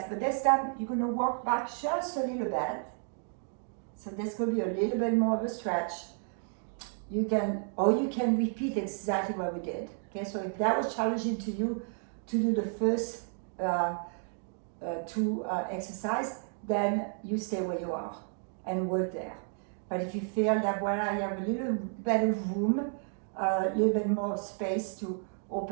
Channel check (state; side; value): silent; left; 56 dB below the other